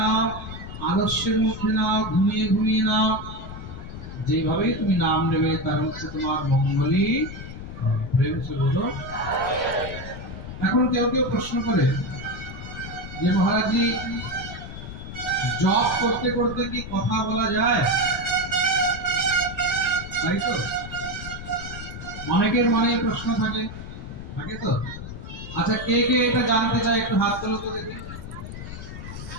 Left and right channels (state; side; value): noise; left; rumble, 10 dB below the sound